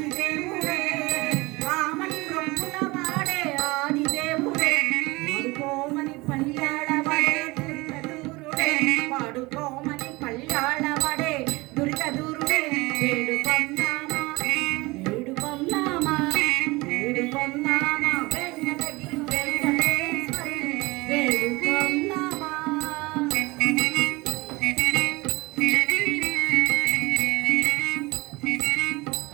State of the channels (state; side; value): quieter; left; 22.9 dB